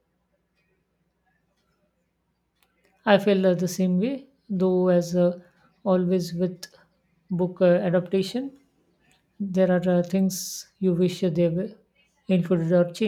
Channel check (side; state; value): both; identical; correlation 1.00